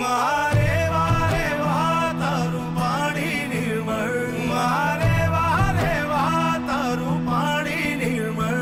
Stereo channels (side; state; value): both; identical; correlation 1.00